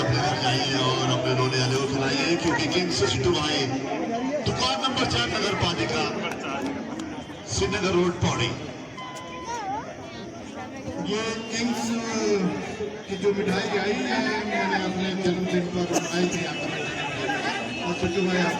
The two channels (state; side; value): identical; both; correlation 1.00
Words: अपने घर जाइए और अपने रोने वाले को खिलाइए क्योंकि किंग्स सिट्टू भाई दुकान नंबर 4 नगर पालिका श्रीनगर रोड पौड़ी। ये किंग्स की जो मिठाई आई है मैंने अपने जन्मदिन पर आई थी और सिट्टू भाई